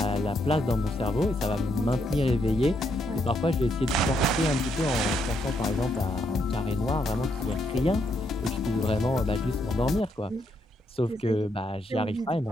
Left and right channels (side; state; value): both; normal; correlation 0.77